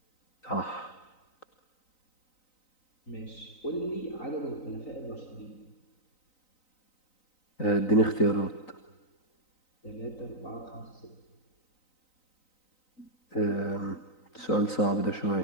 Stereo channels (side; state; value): right; late; 3.9 ms